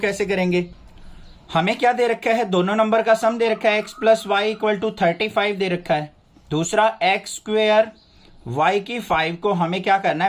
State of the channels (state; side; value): identical; both; correlation 1.00